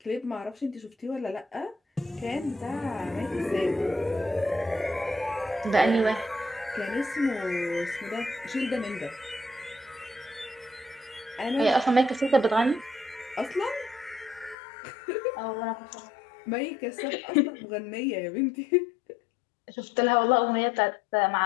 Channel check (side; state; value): right; drops out; at 14.6 s